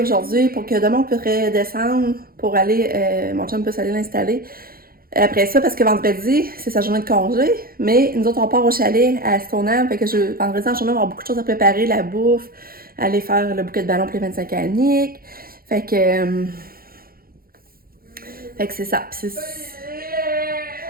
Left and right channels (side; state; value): left; late; 0.43 ms